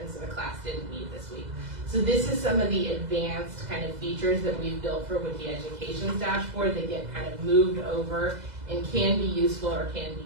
so the class didn't meet this week. So this is some of the advanced kind of features that we've built for Wiki Education's dashboard that get kind of moved over and can be useful or can be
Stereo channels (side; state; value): left; late; 2.0 ms